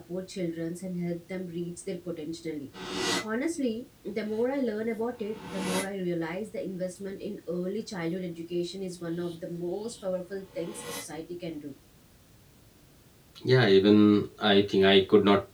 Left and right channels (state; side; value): identical; both; correlation 1.00